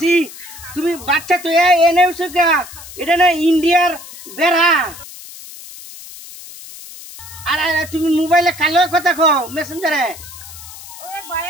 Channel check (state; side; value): noise; left; hiss, 15 dB below the sound